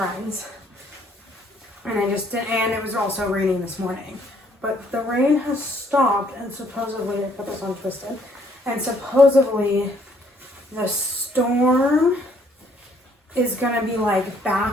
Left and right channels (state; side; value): normal; both; correlation 0.65